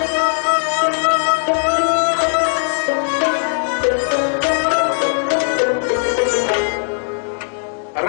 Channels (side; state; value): right; silent; digital silence